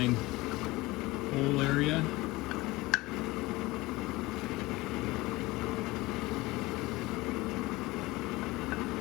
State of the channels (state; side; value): quieter; right; 20.8 dB